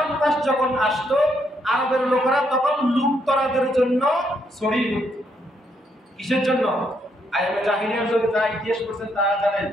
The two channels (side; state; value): both; normal; correlation 0.74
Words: মাস যখন আসতো আরবের লোকেরা তখন লুটতরাদের জন্য ছড়িয়ে পড়ত। কিসের জন্য? আইয়ুবে জাহিলিয়ার যুগে যারা ইতিহাস পড়ছেন তারা জানেন,